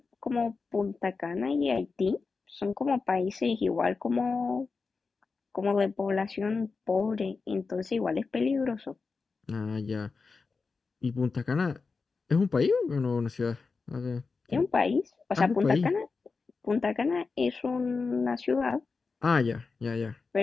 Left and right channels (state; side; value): quieter; right; 4.5 dB